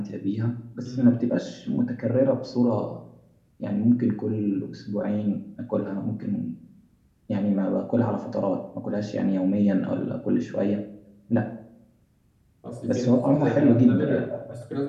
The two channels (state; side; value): identical; both; correlation 1.00